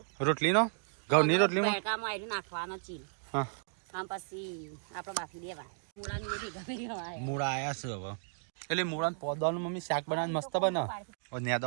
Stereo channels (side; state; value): left; silent; digital silence